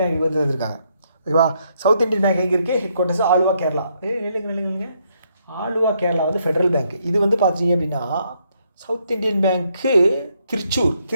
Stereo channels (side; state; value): both; inverted; correlation -0.74